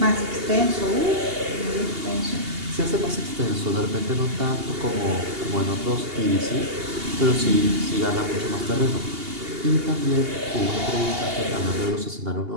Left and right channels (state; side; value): late; left; 2.8 ms